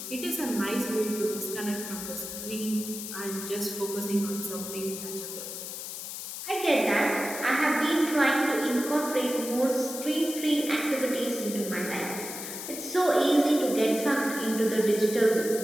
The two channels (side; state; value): left; noise; hiss, 8 dB below the sound